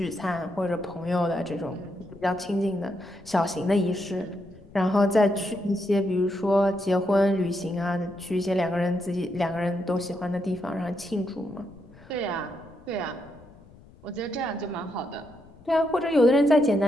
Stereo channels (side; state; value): left; noise; rumble, 24 dB below the sound